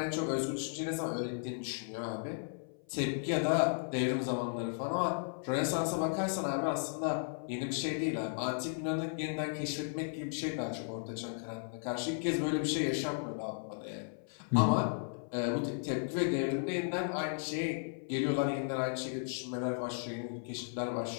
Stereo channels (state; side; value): silent; right; 54 dB below the other